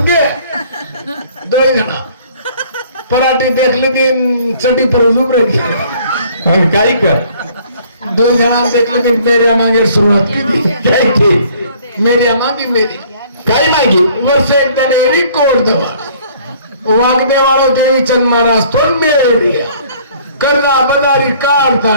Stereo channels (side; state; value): both; inverted; correlation -0.56